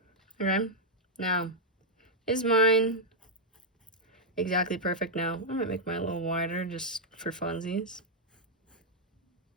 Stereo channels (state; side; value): normal; both; correlation -0.05